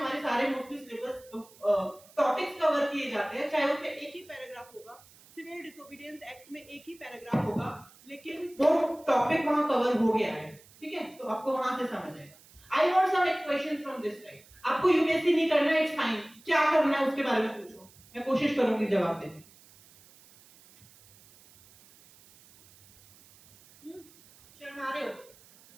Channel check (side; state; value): right; noise; hiss, 25 dB below the sound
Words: सारे मोस्टली सिलेबस टॉपिक्स कवर किए जाते हैं, चाहे उसमें एक ही पैराग्राफ होगा, सिविल डिसोबीडियंस एक्ट में एक ही पैराग्राफ होगा, लेकिन वो टॉपिक वहां कवर हो गया है, ठीक है। तो आपको वहां से समझ आएगा। I want some questions from this side. आपको यूपीएससी नहीं करना है, इट्स फाइन, क्या करना है उसके बारे में पूछो, मैं कोशिश करूंगी जवाब देने। शर्मा रहे हो?